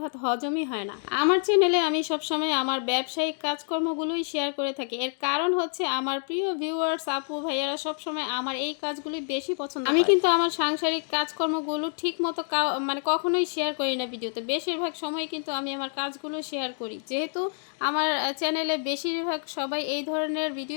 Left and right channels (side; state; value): right; silent; 60 dB below the other